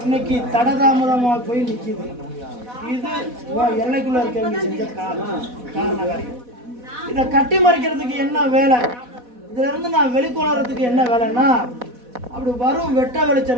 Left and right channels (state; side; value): late; left; 4.1 ms